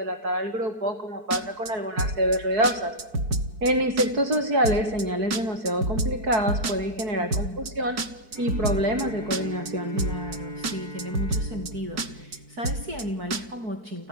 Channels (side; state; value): left; late; 4.6 ms